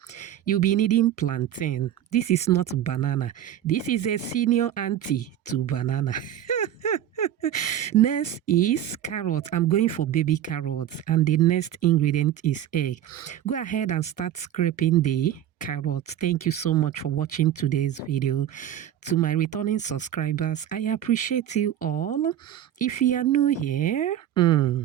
You'll be needing plantain. This is not banana. This is a senior auntie to banana. Next is carrot. I'm going for baby carrots. And the next ingredient is egg. Go ahead and start scraping the carrots. Thank you so much for watching today's video. To my returning subscribers, I appreciate you all. If you are new here,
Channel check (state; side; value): quieter; left; 11.1 dB